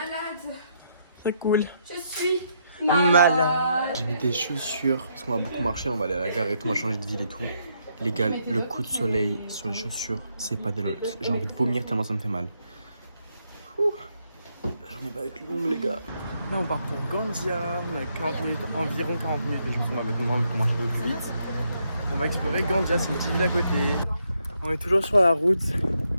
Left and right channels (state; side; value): inverted; both; correlation -0.76